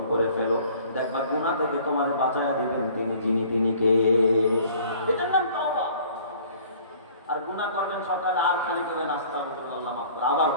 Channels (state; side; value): inverted; both; correlation -0.52